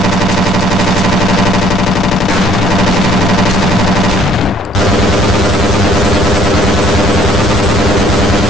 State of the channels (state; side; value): normal; both; correlation 0.59